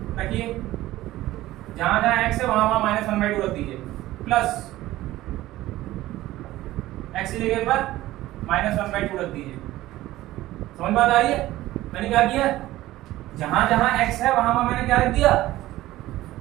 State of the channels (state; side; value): quieter; left; 16.1 dB